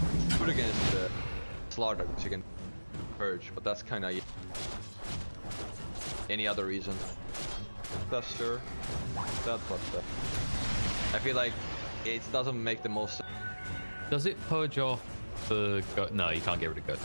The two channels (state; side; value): inverted; both; correlation -1.00